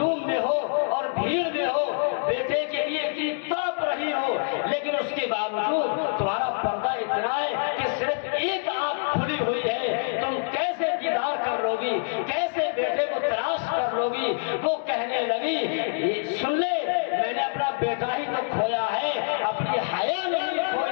میں ہو اور بھیڑ میں ہو، بیٹے کے لیے اتنی تڑپ رہی ہو، لیکن اس کے باوجود تمہارا پردہ اتنا ہے کہ صرف ایک آنکھ کھلی ہوئی ہے، تم کیسے دیدار کر لو گی، کیسے بیٹے کو تلاش کر لو گی۔ وہ کہنے لگی سن لے میں نے اپنا بیٹا ہی تو کھویا ہے، اپنی حیا نہیں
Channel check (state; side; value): silent; right; digital silence